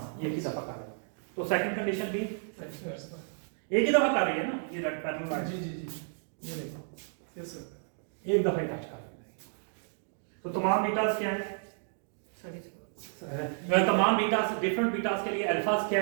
ये ही दफा कर रही है। तो सेकंड कंडीशन भी सर। एक ही दफा कर रही है ना, ये रेड पैरेलल लाइन जी जी जी ये देखो। Yes sir. एक दफा ही टच कर रही है। तो तमाम बीटास क्या है, तमाम बीटास, डिफरेंट बीटास के लिए अल्फास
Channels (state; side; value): silent; left; digital silence